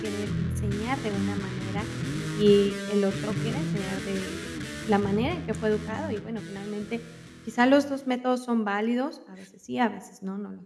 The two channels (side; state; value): both; identical; correlation 1.00